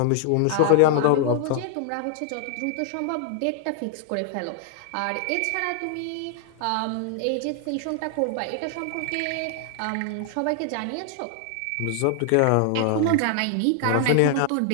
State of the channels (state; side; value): different; both; correlation 0.00